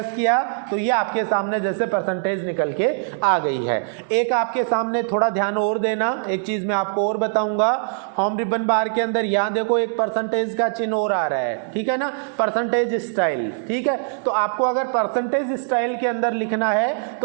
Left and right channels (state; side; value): silent; left; digital silence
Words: किया, तो ये आपके सामने जैसे परसेंटेज निकल के आ गई है। एक आपके सामने थोड़ा ध्यान और देना, एक चीज़ मैं आपको और बताऊंगा। होम रिबन बार के अंदर यहाँ देखो एक परसेंटेज का चिन्ह और आ रहा है, ठीक है ना, परसेंटेज स्टाइल, ठीक है। तो आपको अगर परसेंटेज स्टाइल के अंदर लिखना है